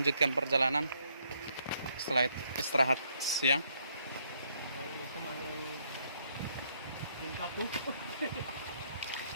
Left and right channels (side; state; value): both; inverted; correlation -0.70